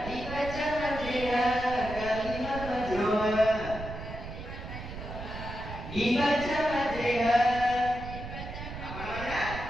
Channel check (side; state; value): right; noise; rumble, 9 dB below the sound